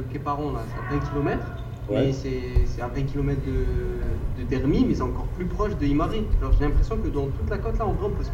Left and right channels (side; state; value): both; identical; correlation 1.00